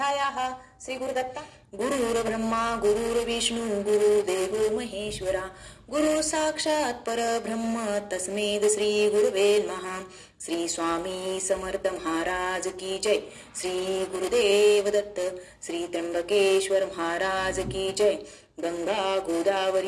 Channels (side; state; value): both; identical; correlation 1.00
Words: श्री गुरुदत्ता गुरुर्ब्रह्मा गुरुर्विष्णु गुरुदेवो महेश्वरा गुरु साक्षात् परब्रह्म तस्मै श्री गुरुवे नमः श्री स्वामी समर्थ महाराज की जय श्री गुरुदेव दत्त श्री त्र्यंबकेश्वर महाराज की जय गंगा